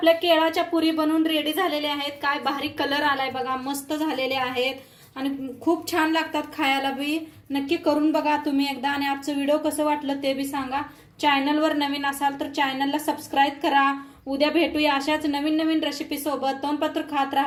केळाच्या पुरी बनवून रेडी झालेल्या आहेत. काय भारी कलर आलाय बघा. मस्त झालेले आहेत आणि खूप छान लागतात खायला बी. नक्की करून बघा तुम्ही एकदा. आणि आजचं व्हिडिओ कसं वाटलं ते बी सांगा. चॅनलवर नवीन असाल तर चॅनलला सबस्क्राईब करा. उद्या भेटूया अशाच नवीन नवीन रेसिपी सोबत. तोंडपत्र खात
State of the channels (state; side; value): identical; both; correlation 1.00